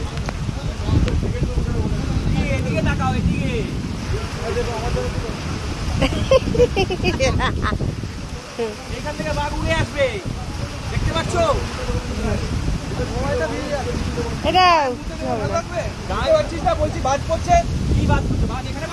এদিকে তাকাও, এদিকে। এখান থেকে বাঘ উড়ে আসবে, দেখতে পাচ্ছ? এটা গায়ে হচ্ছিস না, বলছি বাজ পড়ছে। কি বাজ পড়ছে? বাজ এখানে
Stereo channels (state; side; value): identical; both; correlation 1.00